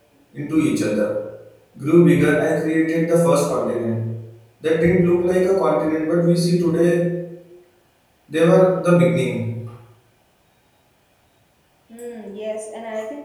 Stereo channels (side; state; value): both; identical; correlation 1.00